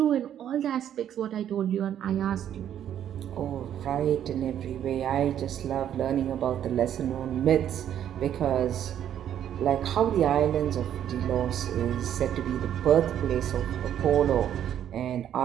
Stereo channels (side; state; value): left; quieter; 10.3 dB